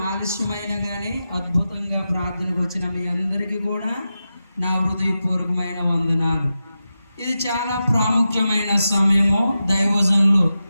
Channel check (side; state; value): both; inverted; correlation -0.91